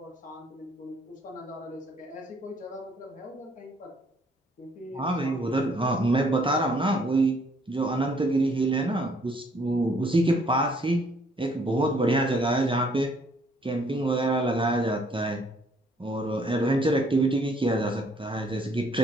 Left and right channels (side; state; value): both; normal; correlation 0.63